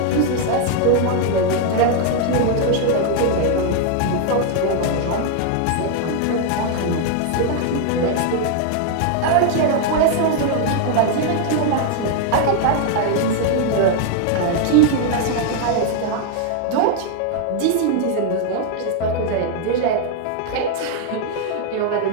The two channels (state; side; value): different; both; correlation 0.00